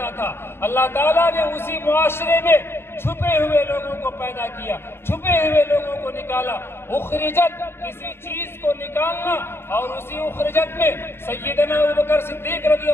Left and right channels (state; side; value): late; right; 0.11 ms